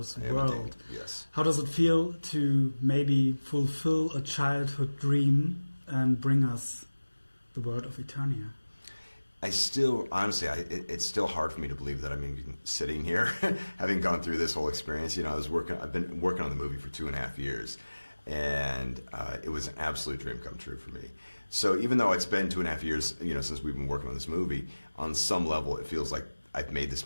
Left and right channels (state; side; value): inverted; both; correlation -1.00